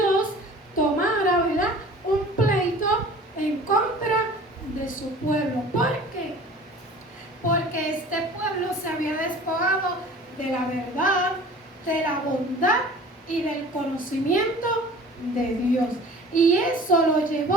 tomara, ¿verdad?, un pleito en contra de su pueblo. ¿Por qué? Porque este pueblo se había despojado de la verdad, de la bondad y del conocimiento de Dios. Y eso lo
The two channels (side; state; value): both; normal; correlation 0.44